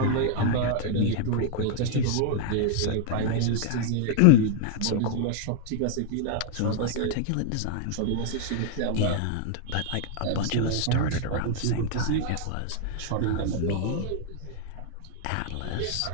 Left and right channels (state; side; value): different; both; correlation -0.01